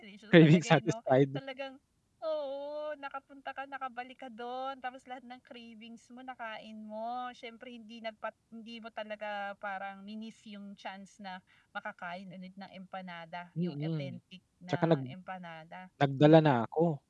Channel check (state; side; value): identical; both; correlation 1.00